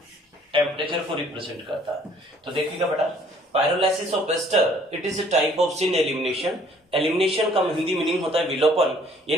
टेम्परेचर को रिप्रेजेंट करता है। तो देखिएगा बेटा pyrolysis of ester it is a type of syn elimination. Elimination का हिंदी मीनिंग होता है विलोपन,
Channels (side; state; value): both; normal; correlation 0.58